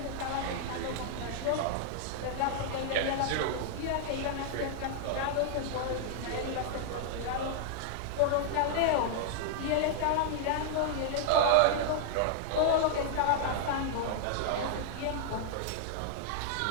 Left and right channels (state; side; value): different; both; correlation -0.01